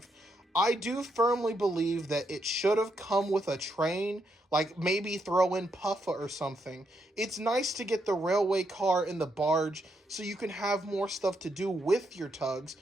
I do firmly believe that it should have come with a train, like maybe throw in Puffa or something. It's nice to get the railway car and the barge so you can have more stuff to do with your Tugs,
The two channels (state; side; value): normal; both; correlation 0.79